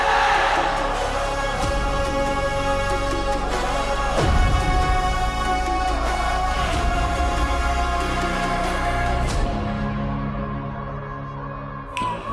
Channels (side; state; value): both; identical; correlation 1.00